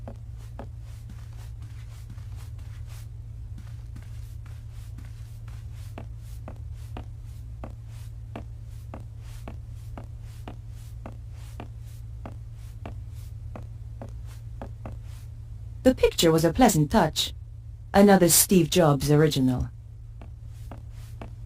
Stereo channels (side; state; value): both; identical; correlation 1.00